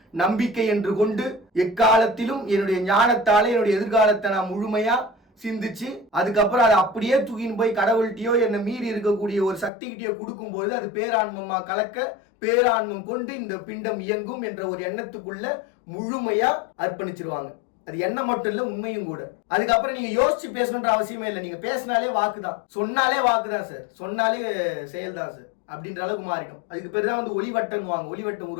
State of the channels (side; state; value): right; drops out; at 9.7 s